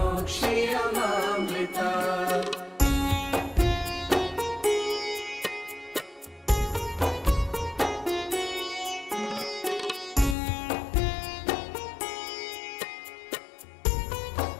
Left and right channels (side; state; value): right; drops out; at 10.4 s